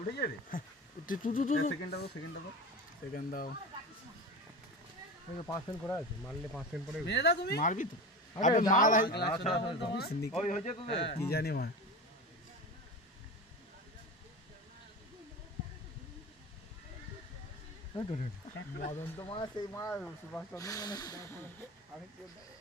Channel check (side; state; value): both; normal; correlation 0.28